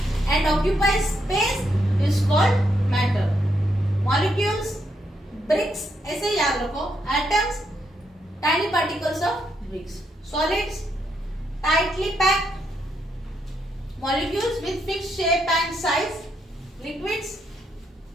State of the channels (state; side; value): normal; both; correlation 0.78